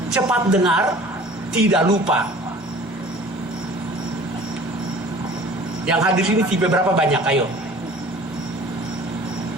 Cepat dengar, tidak lupa. Yang hadir sini tipe berapa banyak? Ayo.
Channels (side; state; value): both; normal; correlation 0.46